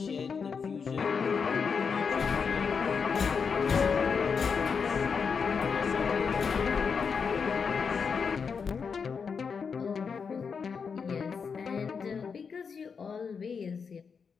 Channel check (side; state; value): right; quieter; 5.9 dB